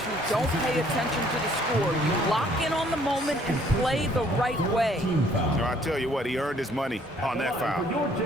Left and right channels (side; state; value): both; normal; correlation 0.62